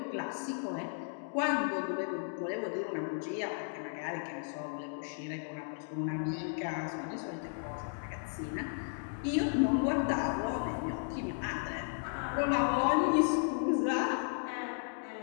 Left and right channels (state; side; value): silent; right; digital silence